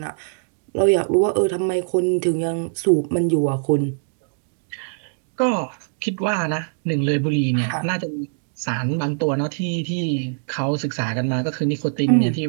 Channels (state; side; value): silent; left; digital silence